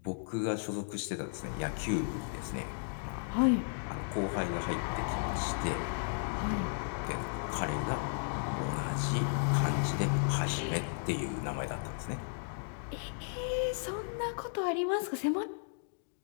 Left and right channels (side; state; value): right; silent; digital silence